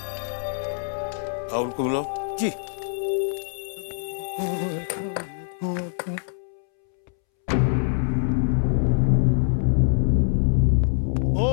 राहुल को बुलाओ जी।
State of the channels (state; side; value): silent; right; 62 dB below the other